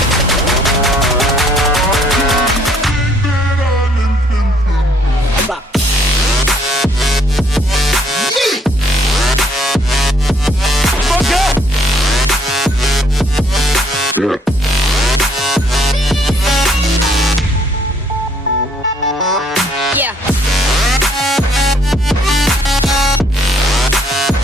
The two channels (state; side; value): normal; both; correlation 0.65